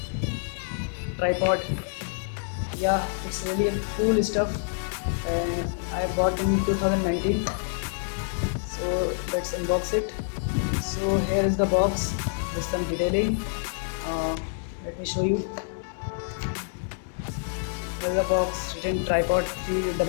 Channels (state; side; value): silent; right; digital silence